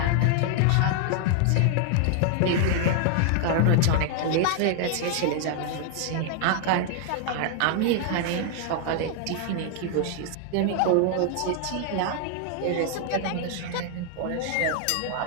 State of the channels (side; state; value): both; different; correlation 0.00